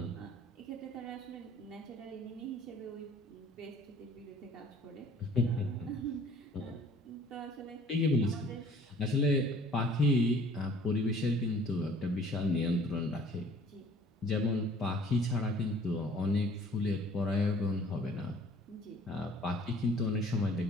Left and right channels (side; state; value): both; normal; correlation 0.53